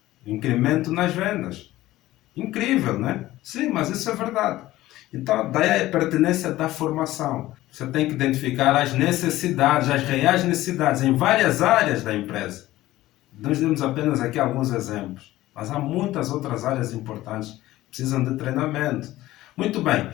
incremento nas vendas. Incrível, né? Sim, mas isso é verdade. Então, daí a pertinência da formação. Você tem que identificar as necessidades, as reais necessidades em várias áreas da empresa. Nós demos apenas aqui alguns exemplos, mas há muitas outras áreas importantes que precisam de treinamento. Muito bem,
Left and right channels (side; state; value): right; quieter; 16.2 dB